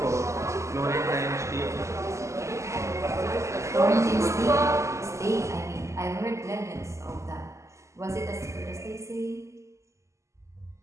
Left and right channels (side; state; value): left; late; 0.14 ms